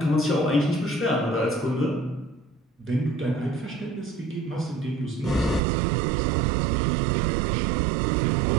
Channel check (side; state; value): left; drops out; at 5.6 s